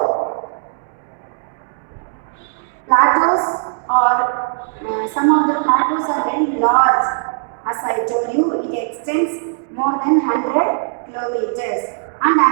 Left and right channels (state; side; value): silent; left; 67 dB below the other